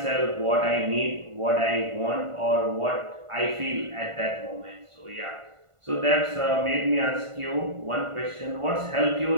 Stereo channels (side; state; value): left; late; 1.5 ms